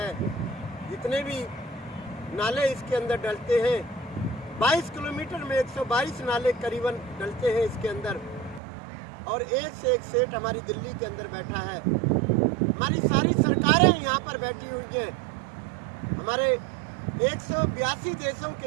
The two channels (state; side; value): drops out; left; at 8.6 s